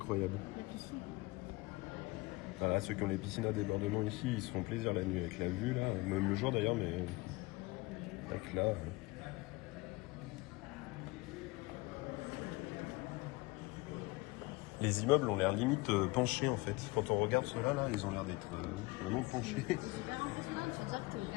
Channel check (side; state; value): right; quieter; 22.9 dB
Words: Voilà, ceux qui ont les piscines à débordement ici, ils se font plaisir la nuit avec la vue là, même le jour d'ailleurs, mais avec là. Les immeubles ont l'air limite penchés en fait. Quand on regarde ceux-là, là, ils ont l'air d'être vraiment penchés. C'est super impressionnant de se dire que t'es